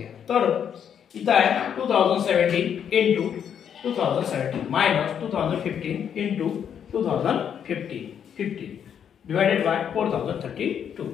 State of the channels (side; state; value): right; quieter; 8.4 dB